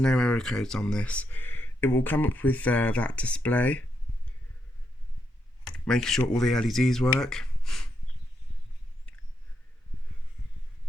error codes on this. It will come up with that display. making sure all the LEDs work.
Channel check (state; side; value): normal; both; correlation 0.81